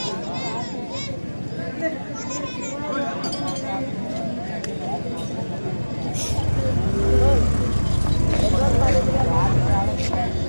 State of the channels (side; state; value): both; inverted; correlation -1.00